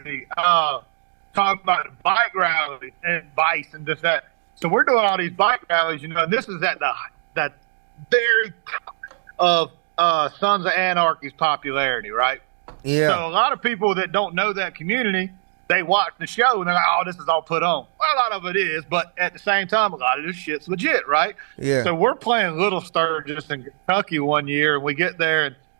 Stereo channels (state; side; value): silent; left; digital silence